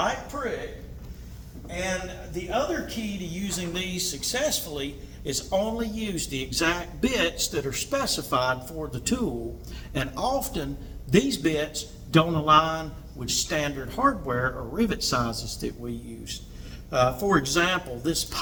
prick. And the other key to using these successfully is only use the exact bits that are specified for the tool. And often these bits don't align with standard hardware or rivet sizes that we use. For example, this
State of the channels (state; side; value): identical; both; correlation 1.00